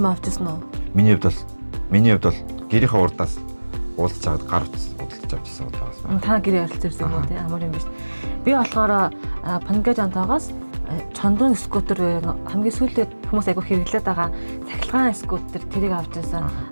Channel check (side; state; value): both; inverted; correlation -1.00